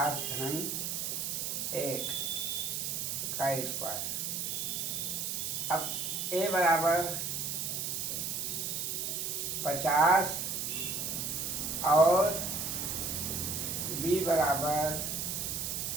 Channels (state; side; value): noise; right; hiss, 2 dB below the sound